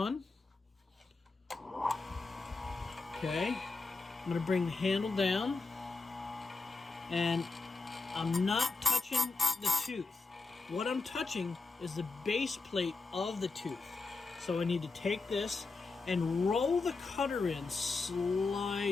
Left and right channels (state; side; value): quieter; right; 3.9 dB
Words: Okay, I'm going to bring the handle down. And I'm not touching the tooth. What I'm touching is the base plate of the tooth. So I need to take this and roll the cutter in